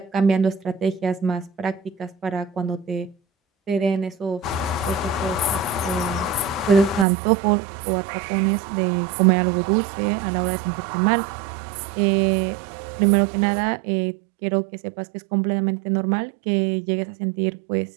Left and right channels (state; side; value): drops out; left; at 7.1 s